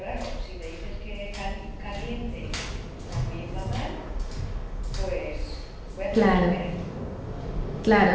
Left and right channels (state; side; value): identical; both; correlation 1.00